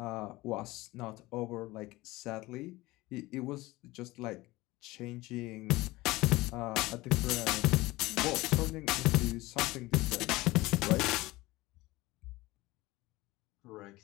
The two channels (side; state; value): right; quieter; 20.0 dB